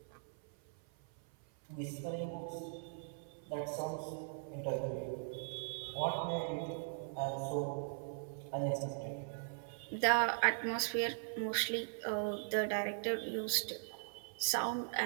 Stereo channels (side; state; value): left; silent; 51 dB below the other